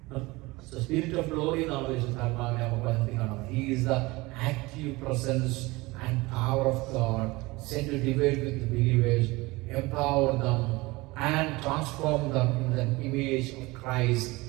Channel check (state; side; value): quieter; left; 22.1 dB